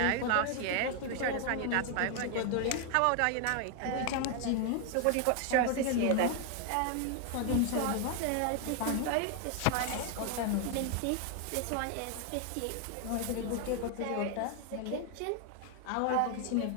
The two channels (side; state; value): both; different; correlation 0.00